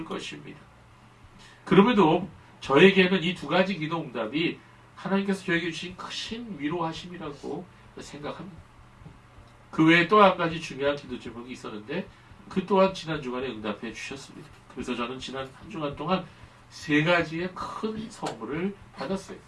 것입니다. 그럼에도 저에게는 이 두 가지 기도 응답이 하나님께서 저에게 주신 크신 위로하심이라고 생각합니다. 그 외에 또 한 가지 중요한 기도 제목이 있었는데 그 또한 지난 주간에 응답해 주셨습니다. 그래서 저는 지난 한 주간 동안 세 가지의 큰 선물을 받았어요.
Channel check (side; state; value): both; identical; correlation 1.00